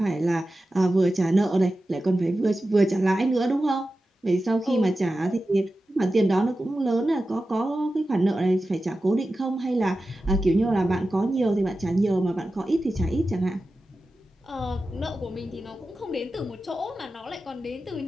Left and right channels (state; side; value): normal; both; correlation 0.93